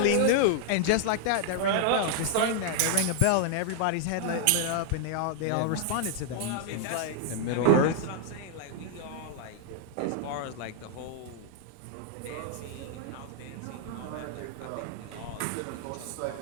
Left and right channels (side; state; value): both; different; correlation 0.00